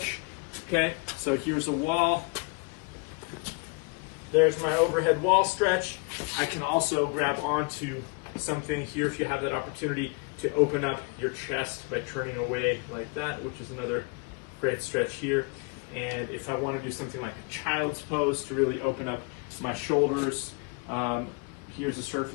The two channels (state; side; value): quieter; right; 31.9 dB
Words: okay? So here's a wall. There's my overhead wall stretch. I can also grab onto something here if you have that opportunity to open up your chest by turning away like that, which is another great stretch here. And if I want to do something like a child's pose to really open up my shoulders, here's a